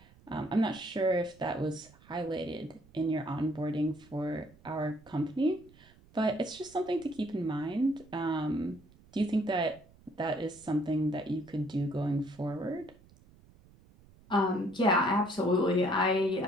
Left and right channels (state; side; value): noise; right; rumble, 26 dB below the sound